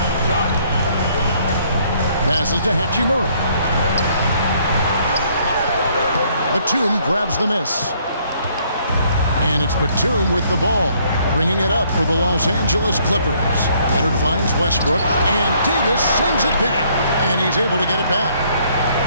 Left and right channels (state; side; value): inverted; both; correlation -0.65